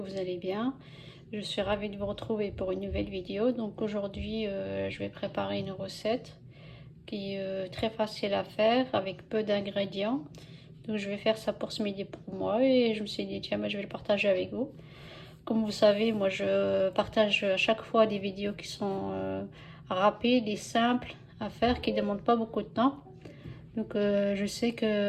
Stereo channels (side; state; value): both; identical; correlation 1.00